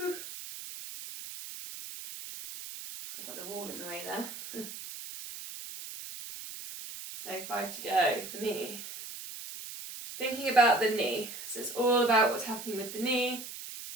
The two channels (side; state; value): right; noise; hiss, 10 dB below the sound